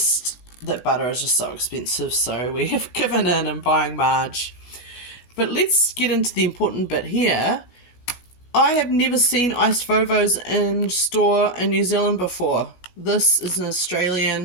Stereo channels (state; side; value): late; right; 16 ms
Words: that butter is just so expensive, so we have given in and buying marge. But let's get into the important bit here. I have never seen iced Vovos in store in New Zealand before. This is an